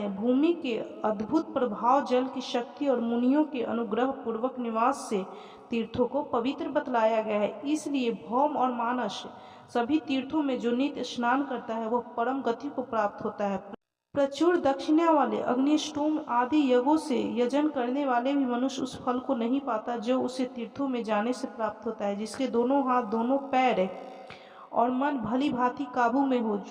भूमि के अद्भुत प्रभाव, जल की शक्ति और मुनियों के अनुग्रह पूर्वक निवास से तीर्थों को पवित्र बतलाया गया है। इसलिए भौम और मानस सभी तीर्थों में जो नित्य स्नान करता है वह परम गति को प्राप्त होता है। प्रचुर दक्षिणा वाले अग्निष्टोम आदि यज्ञों से यजन करने वाले भी मनुष्य उस फल को नहीं पाता जो उसे तीर्थों में जाने से प्राप्त होता है। जिसके दोनों हाथ, दोनों पैर और मन भली भांति काबू में हो,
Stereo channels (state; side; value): identical; both; correlation 1.00